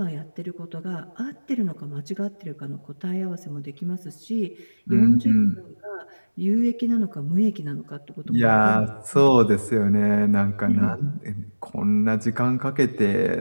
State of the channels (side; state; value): both; inverted; correlation -1.00